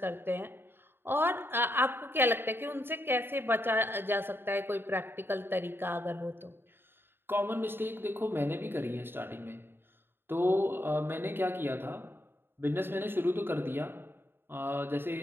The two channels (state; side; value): late; left; 0.10 ms